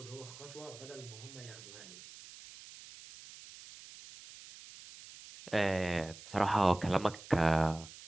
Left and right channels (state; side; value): noise; right; hiss, 17 dB below the sound